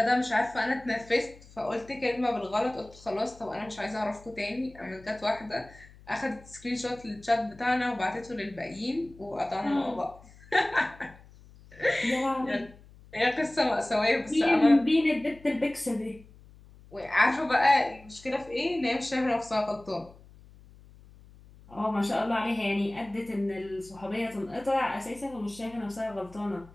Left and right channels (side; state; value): left; noise; hum, 23 dB below the sound